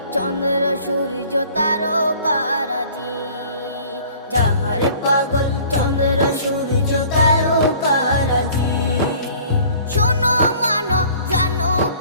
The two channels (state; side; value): inverted; both; correlation -0.50